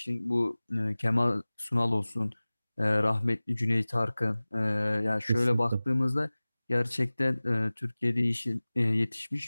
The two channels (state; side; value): inverted; both; correlation -0.99